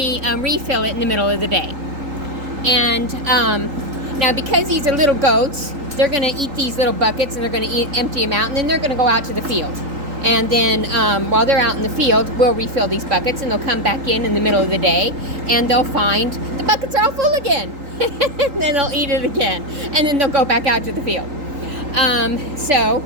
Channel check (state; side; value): late; left; 3.8 ms